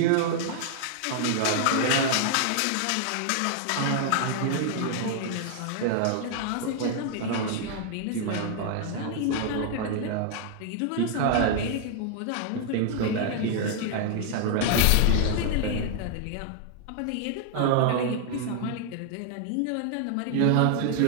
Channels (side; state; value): both; different; correlation 0.00